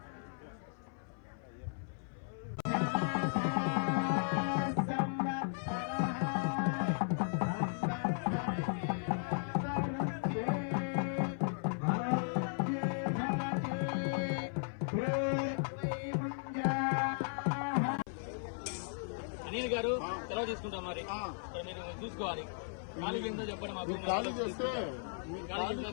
అనిల్ గారు సెలవు తీసుకుంటాం మరి మీరు చూసుకోవాలి. ఖాళీ కింద చెప్పండి మాకు. ఖాళీ చేస్తే ఖాళీ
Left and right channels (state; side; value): silent; right; 54 dB below the other